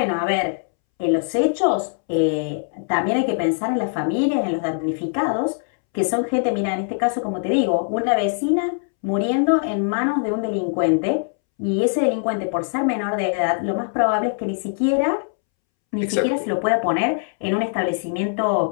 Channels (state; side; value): silent; right; 64 dB below the other